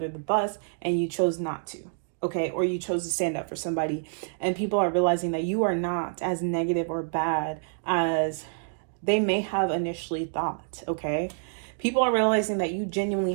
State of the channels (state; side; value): silent; left; digital silence